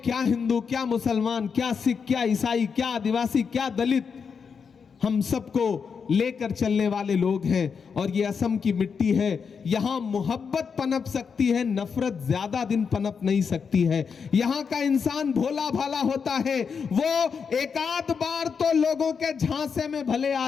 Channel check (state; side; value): quieter; right; 6.1 dB